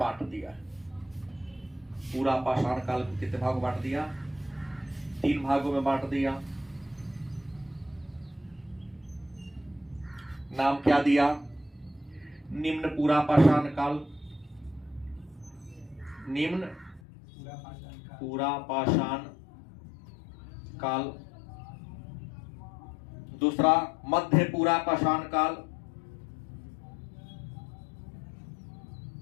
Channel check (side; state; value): right; drops out; at 17.0 s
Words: दिया है। पूरा पाषाण काल को कितने भागों बांट दिया? 3 भागों में बांट दिया। नाम क्या दिया? निम्न पूरा पाषाण काल, निम्न पूरा पाषाण काल। दूसरा मध्य पूरा पाषाण काल,